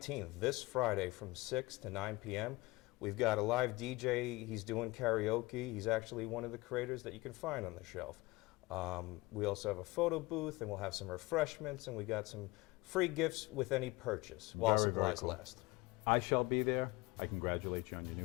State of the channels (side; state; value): right; quieter; 21.9 dB